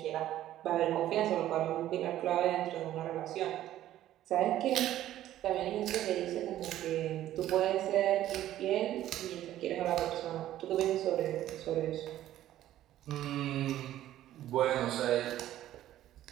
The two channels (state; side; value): quieter; left; 13.1 dB